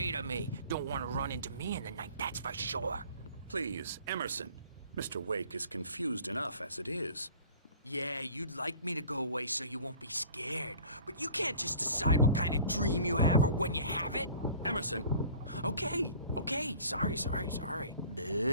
of me. Don't want to run into me in the night, that's for sure. Please, Emerson. Mr. Wake is confused enough as it is. Yeah, you'd like me to go away so you won't be scared. But you can't just decide what kind of dream you have or when you have it. Emerson. Okay, sorry.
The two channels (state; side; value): inverted; both; correlation -0.46